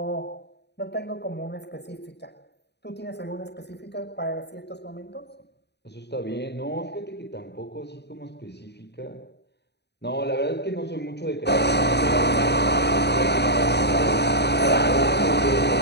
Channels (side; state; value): right; late; 0.49 ms